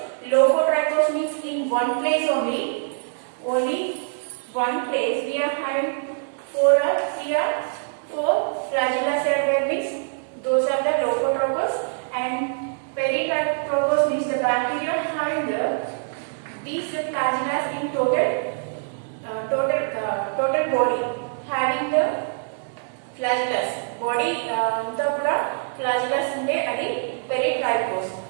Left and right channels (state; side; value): silent; left; digital silence